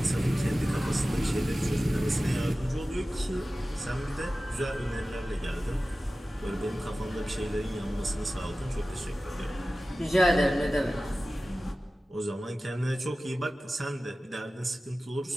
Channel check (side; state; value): both; normal; correlation 0.96